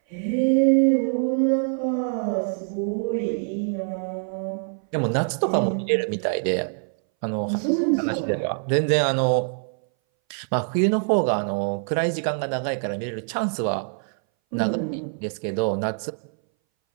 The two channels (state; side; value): silent; left; 60 dB below the other